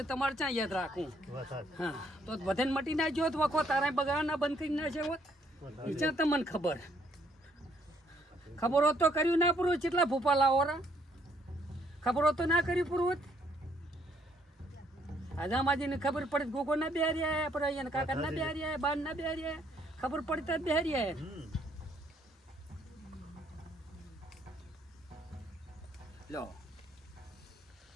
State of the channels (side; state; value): both; normal; correlation 0.68